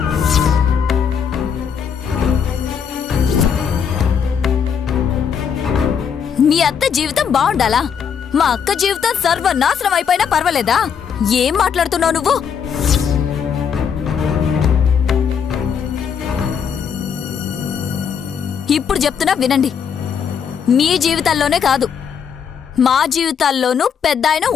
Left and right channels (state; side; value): quieter; right; 7.2 dB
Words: మీ అత్త జీవితం బాగుండాలా? మా అక్క జీవితం సర్వనాశనం అయిపోయినా పర్వాలేదా? ఏం మాట్లాడుతున్నావు నువ్వు? ఇప్పుడు చెప్తున్నా వినండి. మీ జీవితాల్లోనే కాదు, మా జీవితాల్లోనూ పెద్ద ఆయన